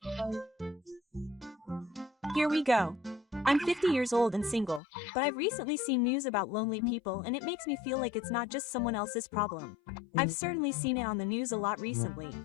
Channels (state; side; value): drops out; right; at 4.8 s